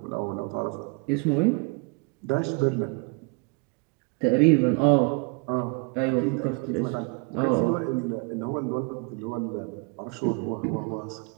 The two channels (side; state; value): left; quieter; 33.4 dB